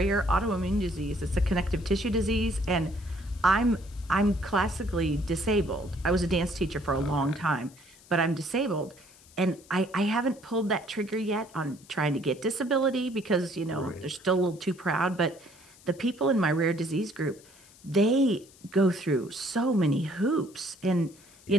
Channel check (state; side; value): noise; left; hiss, 25 dB below the sound